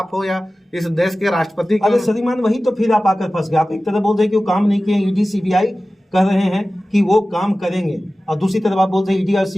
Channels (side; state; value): both; normal; correlation 0.96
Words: हो या इस देश के राष्ट्रपति, अरे श्रीमान वही तो फिर आप आकर फंस गए। आप एक तरफ बोल रहे कि वो काम नहीं किए ईडी सीबीआई, कह रहे हैं कि वो काम करेंगे, और दूसरी तरफ आप बोल रहे हैं ईडी और